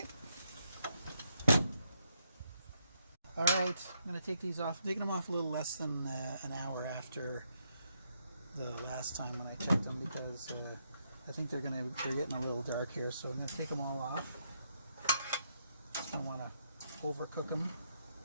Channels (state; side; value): inverted; both; correlation -0.77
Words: All right, I'm going to take these off. I'm taking them off a little less than an hour after the last time when I checked them, because I think they're getting a little dark here. So I'm going to take them all off. I don't want to overcook them.